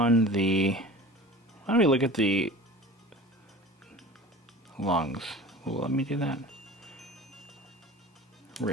the, why don't we look at the lungs? Well, let me do that.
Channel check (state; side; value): normal; both; correlation 0.39